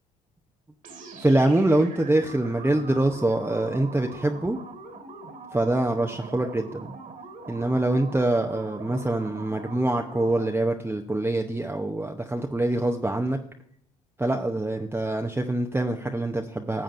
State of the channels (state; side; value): normal; both; correlation 0.90